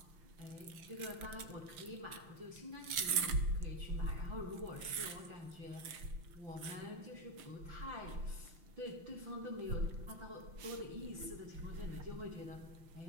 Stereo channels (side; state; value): left; late; 5.9 ms